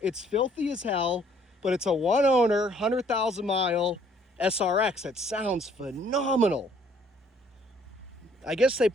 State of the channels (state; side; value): normal; both; correlation 0.61